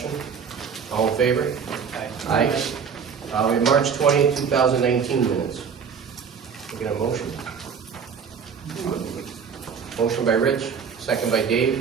All in favor? Aye. We have March 20, 2019 minutes. Making a motion. Motion by Rich. Second by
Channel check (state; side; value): quieter; left; 6.6 dB